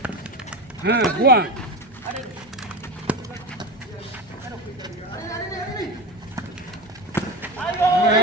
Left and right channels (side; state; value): both; normal; correlation 0.23